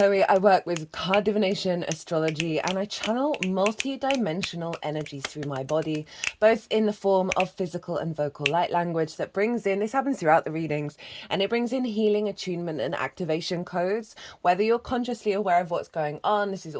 I work with card divination, astrology, and I channel multi-dimensional energies through my body, both in the form of physical and vocal light language that brings in, this happens throughout the readings, and it brings in healing, attunement, and activation codes. Whether you're consciously aware of what's going on, this is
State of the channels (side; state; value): both; identical; correlation 1.00